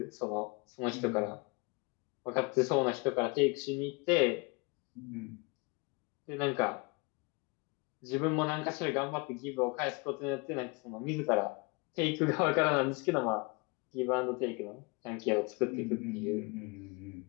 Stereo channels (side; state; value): right; quieter; 29.1 dB